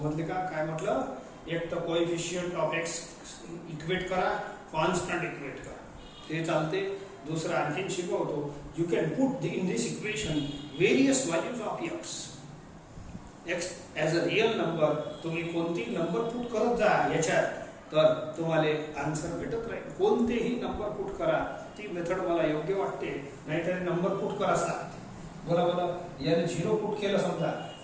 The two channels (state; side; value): identical; both; correlation 1.00